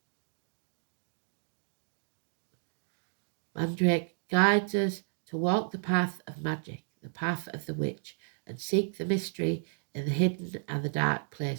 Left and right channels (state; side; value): silent; left; digital silence